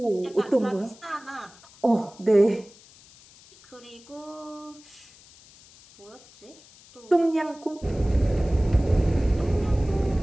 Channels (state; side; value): noise; left; hiss, 24 dB below the sound